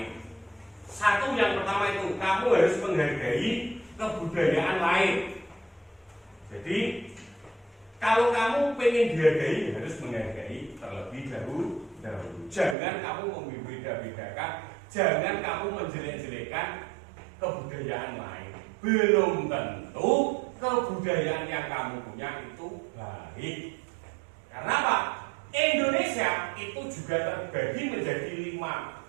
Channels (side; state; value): left; drops out; at 12.8 s